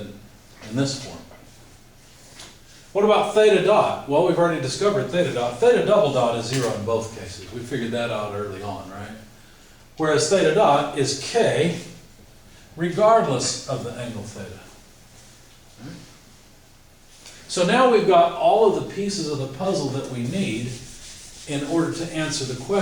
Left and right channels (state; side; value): identical; both; correlation 1.00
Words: in this form. What about theta dot? Well, we've already discovered theta dot. Theta double dot is 0 in both cases. We figured that out early on, right? Whereas theta dot is k regardless of the angle theta. So now we've got all of the pieces of the puzzle that we need in order to answer the